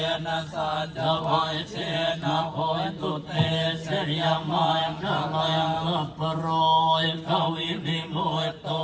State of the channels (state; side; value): identical; both; correlation 1.00